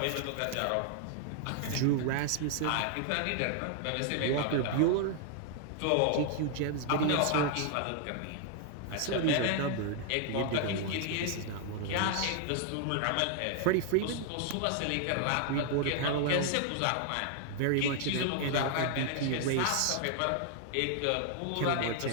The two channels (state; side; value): different; both; correlation 0.00